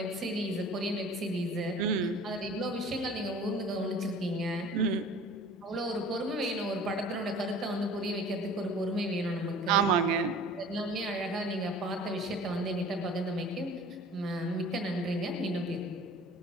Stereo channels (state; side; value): normal; both; correlation 0.45